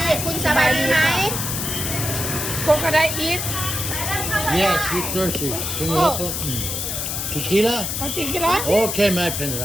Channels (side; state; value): left; noise; hiss, 3 dB below the sound